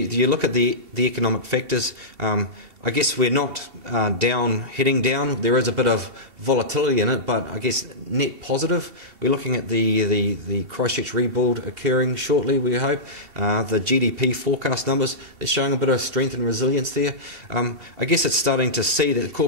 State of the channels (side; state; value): left; late; 2.7 ms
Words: look at the economic factors, I guess we're not heading down. There is a bit of volatility in it, but I guess net positive. We're looking at the Christchurch rebuild occurring shortly, we hope. The GDP forecast numbers, they're showing a bit of strength and resilience there. I guess it's starting to see that